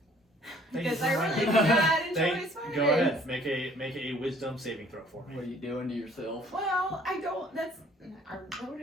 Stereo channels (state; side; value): normal; both; correlation 0.57